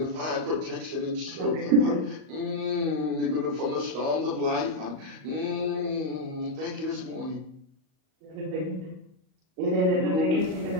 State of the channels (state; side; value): late; left; 38 ms